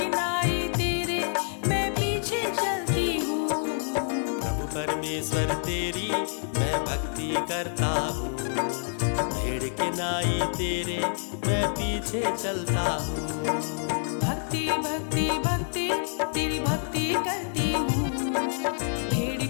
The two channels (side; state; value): right; silent; 60 dB below the other